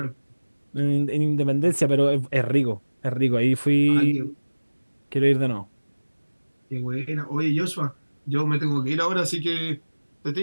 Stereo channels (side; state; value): both; inverted; correlation -1.00